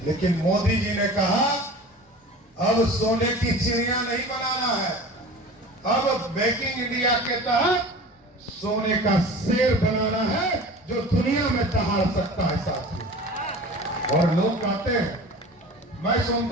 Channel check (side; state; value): both; normal; correlation 0.38